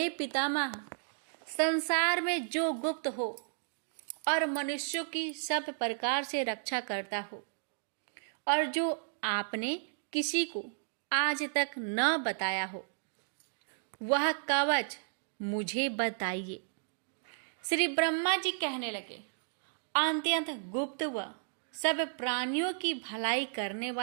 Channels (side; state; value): left; silent; digital silence